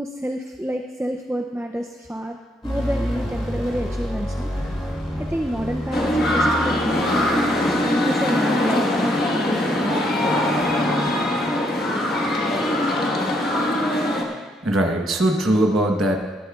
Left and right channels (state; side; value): normal; both; correlation 0.73